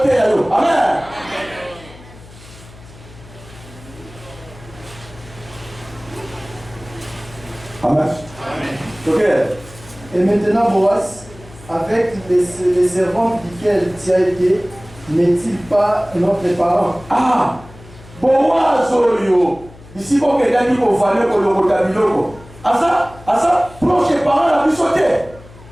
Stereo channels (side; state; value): left; noise; hum, 21 dB below the sound